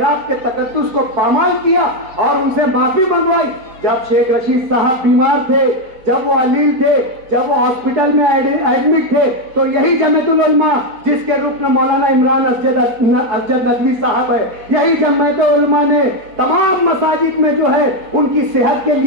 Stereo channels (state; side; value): late; left; 4.6 ms